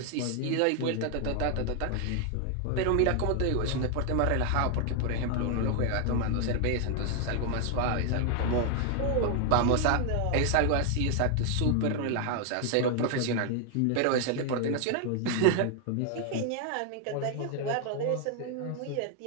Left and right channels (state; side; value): different; both; correlation 0.00